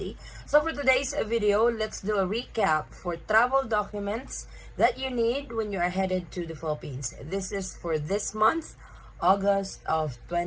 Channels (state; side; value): identical; both; correlation 1.00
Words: So for today's video, let's do a recap for travel documents that you need when you are headed to the Philippines. This is for this month, August of